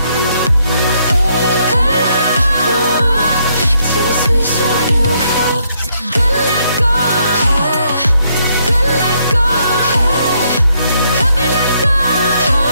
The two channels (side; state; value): both; inverted; correlation -0.73